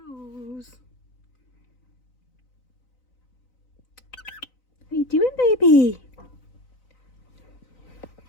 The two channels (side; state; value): right; late; 3.9 ms